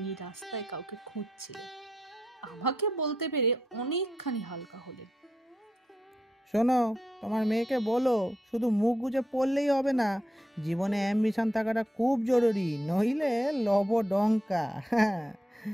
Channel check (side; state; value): both; normal; correlation 0.82